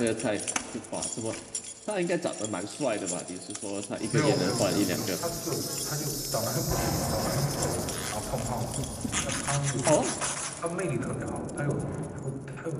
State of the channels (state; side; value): identical; both; correlation 1.00